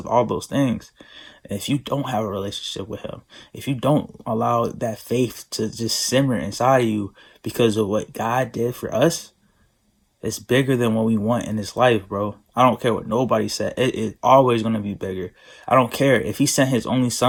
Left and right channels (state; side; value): identical; both; correlation 1.00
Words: all those things. And if you don't have a relationship with Him, if you don't allow that faith to just simmer inside of you because of what God did for us, it's bigger than what we want in this life, bro. I don't care what nobody said. It's always gonna be bigger. I don't care if He sent His only